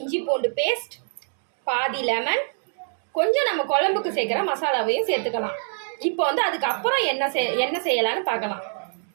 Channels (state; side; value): silent; left; 62 dB below the other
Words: பூண்டு பேஸ்ட், பாதி லெமன், கொஞ்சம் நம்ம குழம்புக்கு சேர்க்குற மசாலாவையும் சேர்த்துக்கலாம். இப்போ அதுக்கப்புறம் என்ன செய்யலான்னு பார்க்கலாம்.